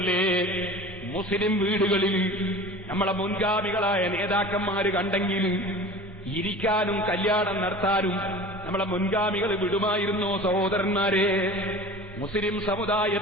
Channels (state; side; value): normal; both; correlation 0.38